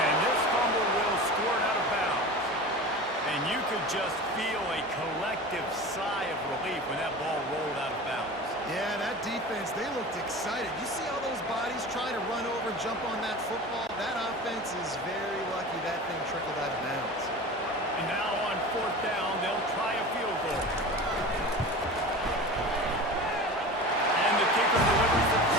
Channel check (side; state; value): both; normal; correlation 0.33